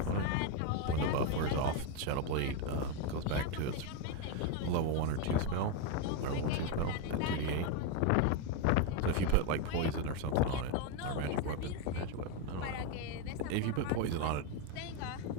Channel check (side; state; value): both; different; correlation 0.02